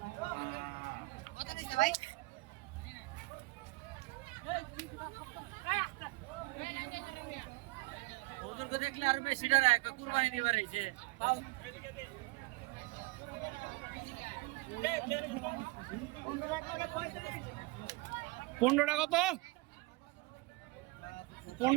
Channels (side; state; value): left; quieter; 23.1 dB